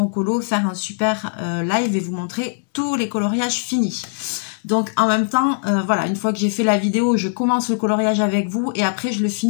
colo, faire un super live et vous montrer tous les coloriages finis. Donc en même temps, voilà, une fois que j'ai fait la vidéo, je commence le coloriage avec vous et après je le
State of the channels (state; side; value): silent; right; digital silence